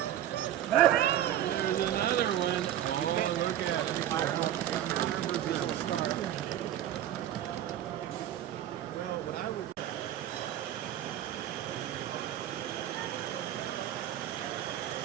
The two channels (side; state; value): left; quieter; 11.7 dB